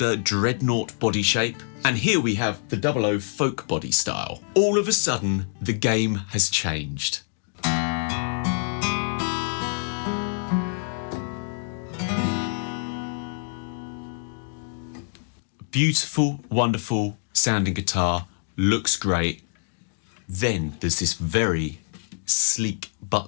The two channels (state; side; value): silent; right; 61 dB below the other